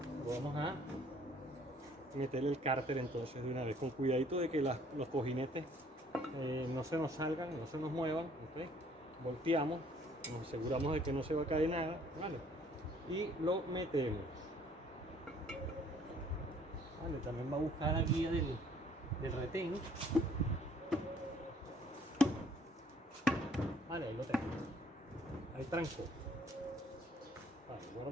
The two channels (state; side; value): normal; both; correlation 0.59